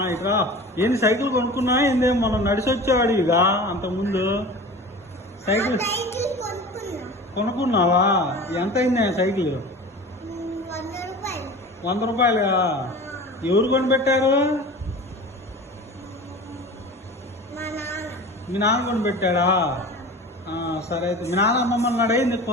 ఇటు రా. ఏంది సైకిల్ కొనుక్కున్నా? ఏంది మనం నడిచి వచ్చేవాడివిగా అంతకుముందు. సైకిల్ కొనుక్కున్నావా? ఎంత అయింది సైకిల్? 100 రూపాయలుగా? ఎవరు కొనిపెట్టారు? మీ నాన్న కొనిపెట్టాడా? సరే అయితే మీ నాన్న అమ్మమ్మన్నాడు ఏంది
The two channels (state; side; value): normal; both; correlation 0.37